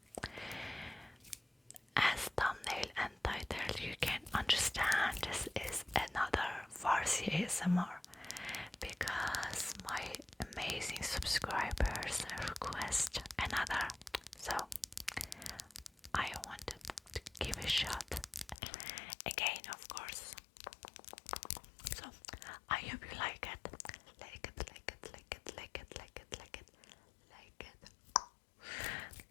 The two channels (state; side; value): drops out; right; at 18.6 s